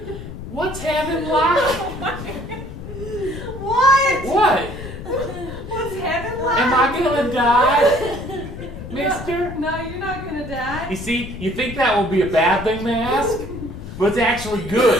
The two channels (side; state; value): left; noise; rumble, 10 dB below the sound